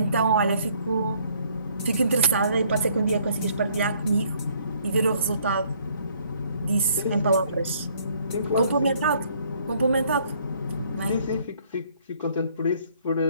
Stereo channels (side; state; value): both; inverted; correlation -0.64